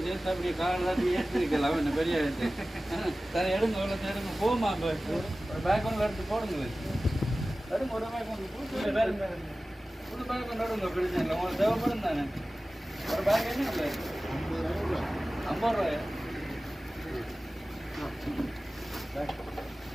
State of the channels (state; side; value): normal; both; correlation 0.96